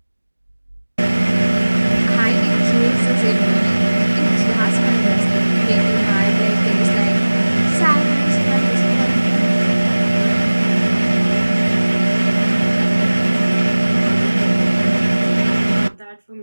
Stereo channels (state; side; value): inverted; both; correlation -1.00